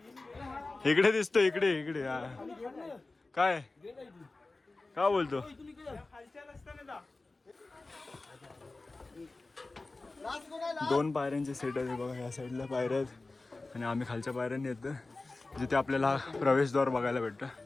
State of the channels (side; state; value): right; quieter; 3.3 dB